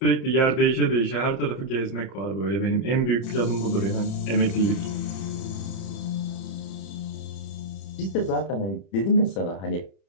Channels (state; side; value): late; right; 31 ms